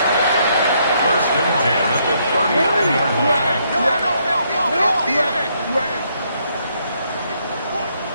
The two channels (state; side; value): inverted; both; correlation -0.73